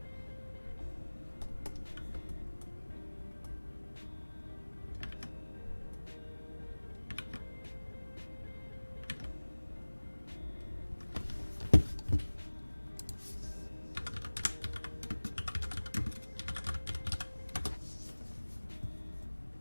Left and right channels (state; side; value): inverted; both; correlation -1.00